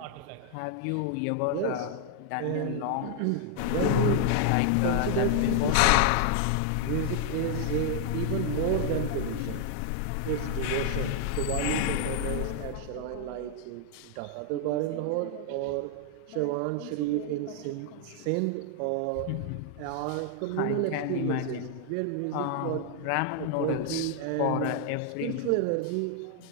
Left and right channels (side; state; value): both; different; correlation 0.00